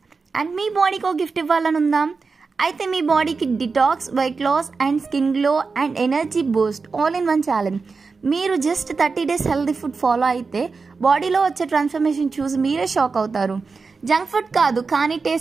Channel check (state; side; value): quieter; left; 4.6 dB